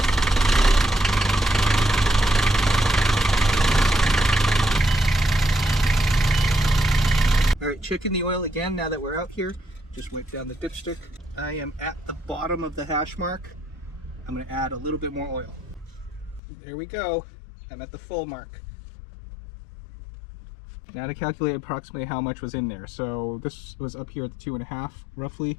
Alright, checking the oil again now that we're out here. Just wipe down the dipstick. I am at the bottom of the hash mark. I'm going to add a little bit more oil. There we go. I'm at the full mark. Now to calculate approximately how much was in there. So this was up here at the 2.5, roughly. A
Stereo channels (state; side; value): drops out; right; at 16.4 s